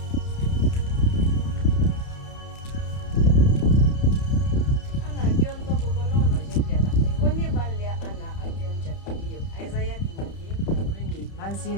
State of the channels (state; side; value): late; right; 30 ms